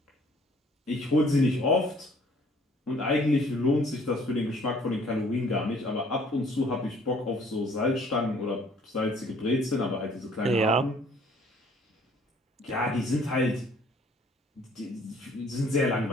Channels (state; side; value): normal; both; correlation 0.58